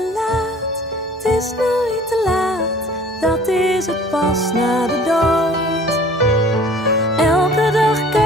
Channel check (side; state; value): both; normal; correlation 0.49